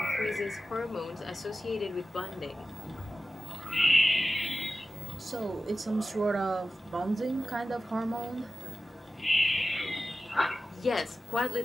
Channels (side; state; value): both; normal; correlation 0.94